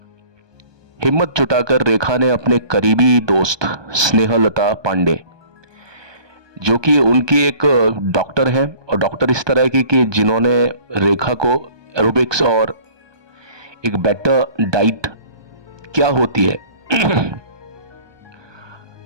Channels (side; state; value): left; late; 1.2 ms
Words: हिम्मत जुटाकर रेखा ने अपने करीबी दोस्त स्नेहलता पांडे, जो कि उनकी एक डॉक्टर हैं, और डॉक्टर इस तरह की कि जिन्होंने रेखा को एरोबिक्स और एक बेटर डाइट क्या होती है